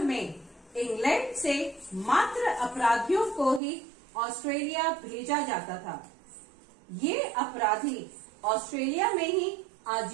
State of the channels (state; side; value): drops out; left; at 3.6 s